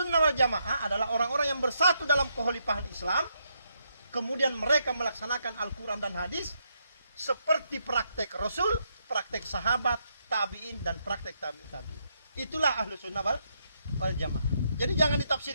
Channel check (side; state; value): both; inverted; correlation -0.78